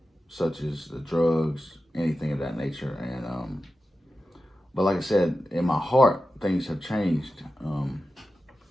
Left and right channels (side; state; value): both; normal; correlation 0.92